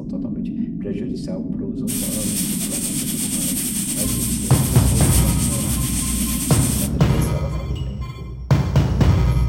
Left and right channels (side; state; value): both; identical; correlation 1.00